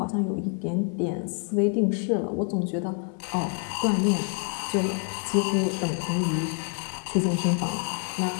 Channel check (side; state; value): right; quieter; 39.3 dB